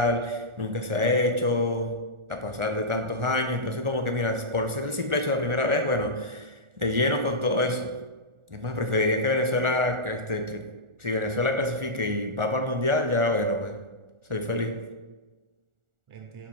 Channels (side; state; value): left; late; 1.4 ms